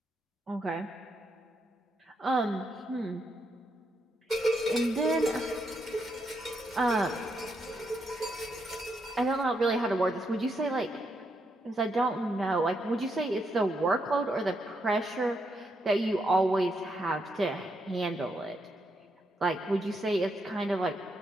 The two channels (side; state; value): both; normal; correlation 0.79